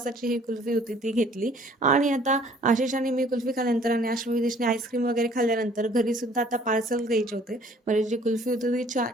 ही कुल्फी होती ती घेतली आणि आता आशिष आणि मी कुल्फी खाल्ल्यानंतर आणि आश्वी विदेशने आईस्क्रीम वगैरे खाल्ल्यानंतर घरी सुद्धा आता पार्सल द्यायचे होते. म्हणजे जी कुल्फी होती ती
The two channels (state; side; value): normal; both; correlation 0.56